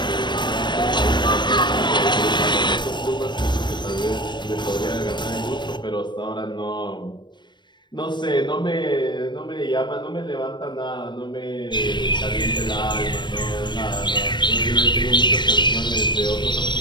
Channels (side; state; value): right; late; 0.22 ms